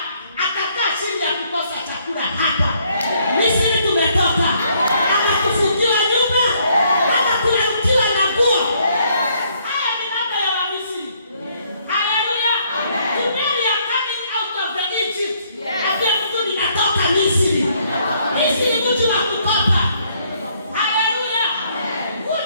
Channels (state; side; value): inverted; both; correlation -0.68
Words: atakaa chini ya kukosa chakula hapa. Misri tumetoka. Ama kufungiwa nyumba, ama kulaukiwa na nguo. Haya ni mambo ya Wamisri. Haleluya. Today we are coming out of the Egypt. Ndio mtu ninatoka Misri. Misri mji wa kukopa. Haleluya.